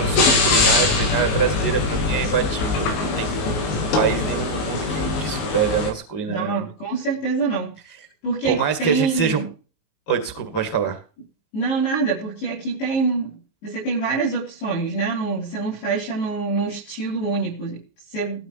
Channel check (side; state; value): right; late; 19 ms